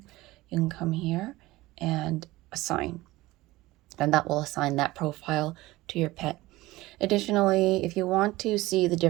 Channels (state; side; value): quieter; left; 18.8 dB